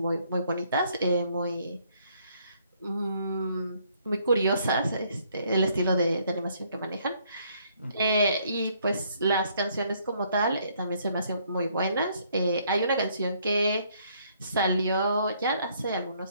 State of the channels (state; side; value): inverted; both; correlation -0.67